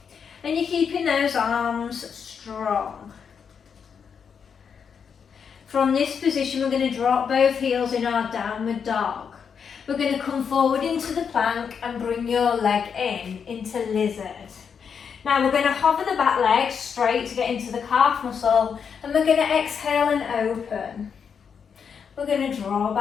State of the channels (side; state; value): right; quieter; 6.8 dB